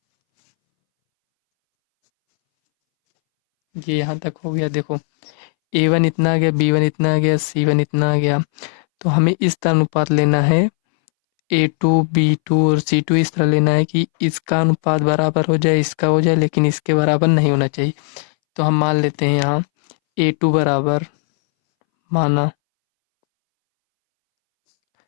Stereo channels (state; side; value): silent; right; 65 dB below the other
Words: ये यहाँ तक हो गया। देखो a1 इतना आ गया, b1 इतना आ गया, c1 इतना आ गया। तो हमें इस तरह अनुपात लेना है, a2 b2 और c2 इस तरह लेना है कि इसका अनुपात बराबर हो जाए, इसका हो जाए, लेकिन इसके बराबर नहीं होना चाहिए। तो हम मान लेते हैं यहाँ a2 बराबर, माना